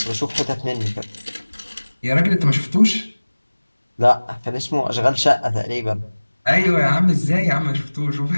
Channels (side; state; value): both; inverted; correlation -1.00